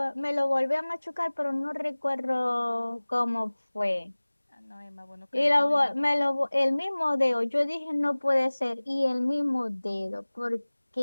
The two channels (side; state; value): both; inverted; correlation -1.00